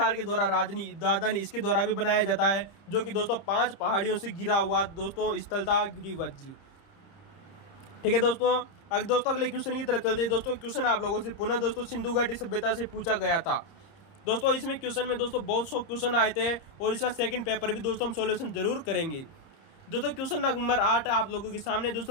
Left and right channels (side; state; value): right; late; 30 ms